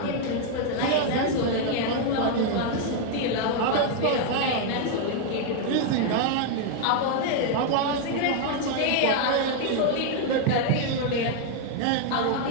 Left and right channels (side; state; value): both; different; correlation 0.00